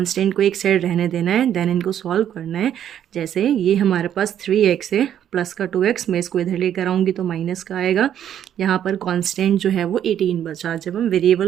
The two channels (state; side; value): quieter; left; 10.1 dB